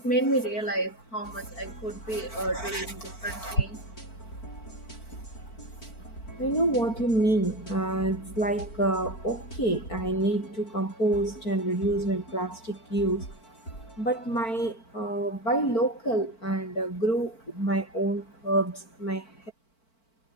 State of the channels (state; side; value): late; right; 4.5 ms